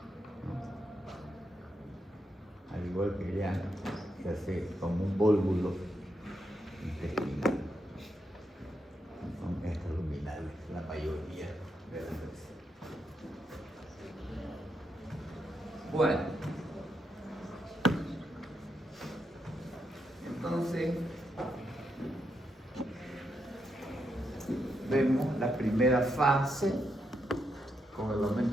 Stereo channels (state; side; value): normal; both; correlation 0.82